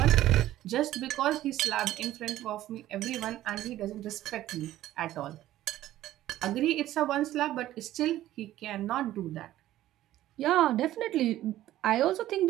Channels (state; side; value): quieter; left; 14.1 dB